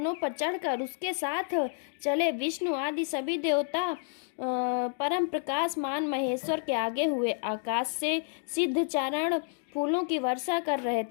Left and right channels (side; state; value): right; silent; 57 dB below the other